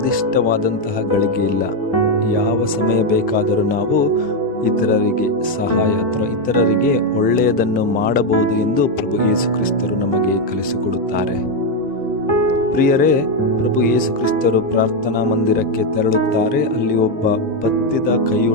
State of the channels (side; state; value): both; normal; correlation 0.05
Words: ಗಳಿಗೆ ಇಲ್ಲ. ಯಾವ ಸಮಯ ಬೇಕಾದರೂ ನಾವು ಇತರರಿಗೆ ಸಹಾಯ ಅಥವಾ ಇತರರಿಗೆ ಒಳ್ಳೆಯದನ್ನು ಮಾಡಬಹುದು ಎಂದು ಪ್ರಭು ಯೇಸು ಕ್ರಿಸ್ತರು ನಮಗೆ ಕಲಿಸಿಕೊಡುತ್ತಾರೆ. ಪ್ರಿಯರೇ, ಪ್ರಭು ಯೇಸು ಕ್ರಿಸ್ತರು ಪ್ರಾರ್ಥನಾ ಮಂದಿರಕ್ಕೆ ತೆರಳುತ್ತಾರೆ. ಅಲ್ಲಿ ಒಬ್ಬ ಬತ್ತಿದ